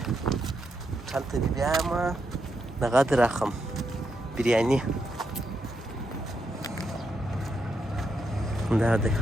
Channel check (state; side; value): normal; both; correlation 0.82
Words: هوټل ته دې بیایم دغه دې راخم بریاني. دا دی